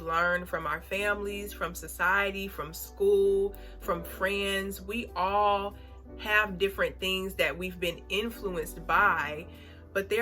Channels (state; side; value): identical; both; correlation 1.00